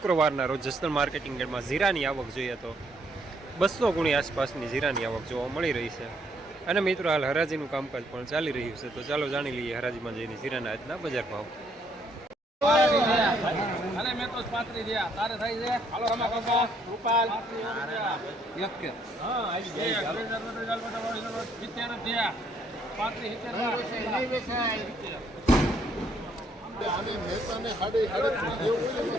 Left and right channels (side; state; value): both; normal; correlation 0.69